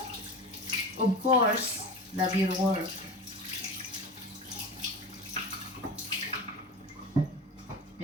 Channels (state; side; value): normal; both; correlation 0.30